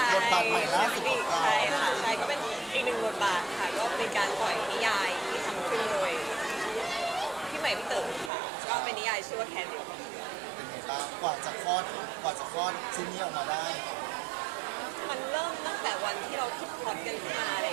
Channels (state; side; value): drops out; left; at 8.3 s